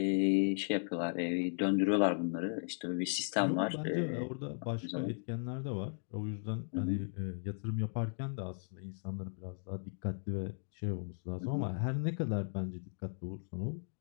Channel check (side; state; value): right; silent; digital silence